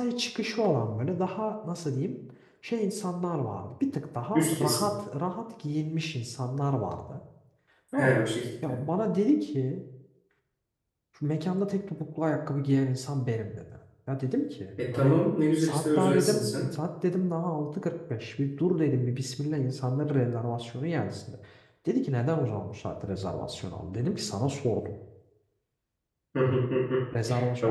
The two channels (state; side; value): identical; both; correlation 1.00